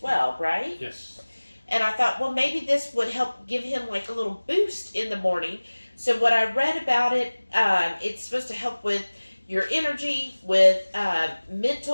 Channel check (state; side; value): inverted; both; correlation -1.00